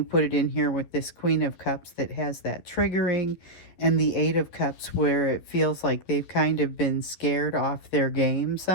put it in here with this Queen of Cups that has that triggering, and the Eight of Cups where it feels like they've kind of been scared off their game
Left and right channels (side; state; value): right; late; 12 ms